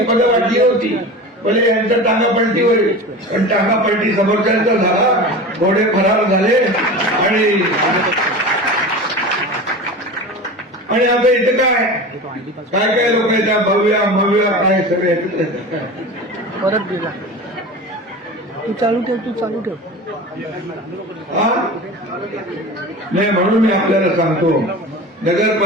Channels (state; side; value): normal; both; correlation 0.32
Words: पदं वाटली होती, भले यांचं टांगा पलटी होईल, पण टांगा पलटी समोरच्यांचा झाला, घोडे फरार झाले. आणि आता इथं काय काय लोक येतात, भव्य काय सगळे परत गेला. तू चालू ठेव. नाही, म्हणून मी आपल्याला सांगतो,